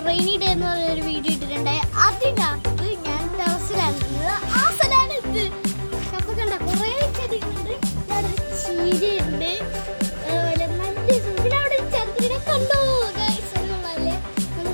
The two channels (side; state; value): both; inverted; correlation -1.00